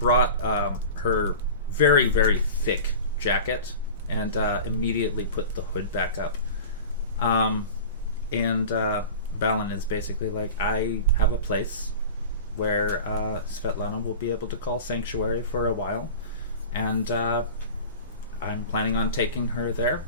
her very, very thick jacket and immediately put the hood back up. And Balin is basically like, I have a place where Svetlana will be able to call sanctuary for a while, and I'm planning on taking her there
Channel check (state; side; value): inverted; both; correlation -0.35